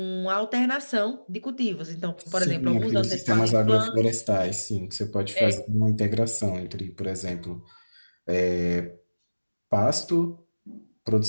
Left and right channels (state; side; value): inverted; both; correlation -1.00